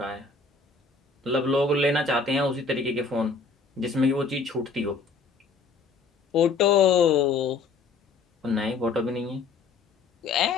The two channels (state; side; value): quieter; right; 4.5 dB